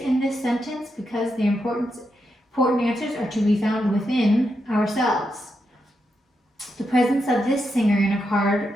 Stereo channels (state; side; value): normal; both; correlation 0.84